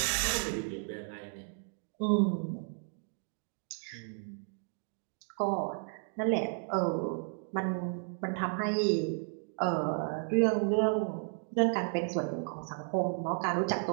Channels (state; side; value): silent; left; 56 dB below the other